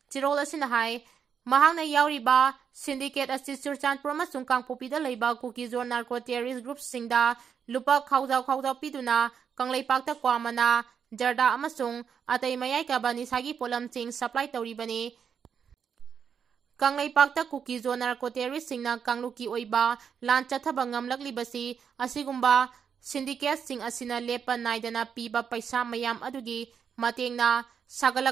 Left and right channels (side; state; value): left; quieter; 7.2 dB